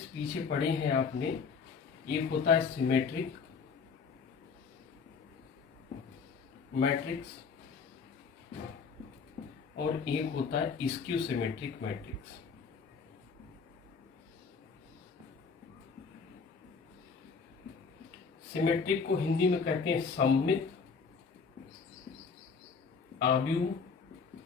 पीछे पढ़े हैं आपने, एक होता है सिमेट्रिक मैट्रिक्स और एक होता है स्क्यू सिमेट्रिक मैट्रिक्स। सिमेट्रिक को हिंदी में कहते हैं सममित आव्यूह,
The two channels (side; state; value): right; quieter; 5.4 dB